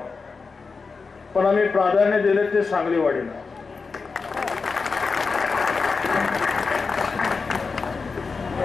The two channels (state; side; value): quieter; right; 4.6 dB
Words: पण आम्ही प्राधान्य दिले ते सांगलीवाडीला.